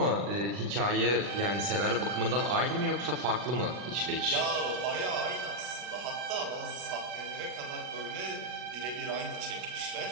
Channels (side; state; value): left; late; 40 ms